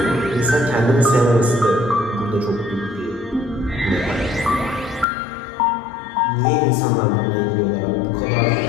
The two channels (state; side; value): drops out; right; at 5.1 s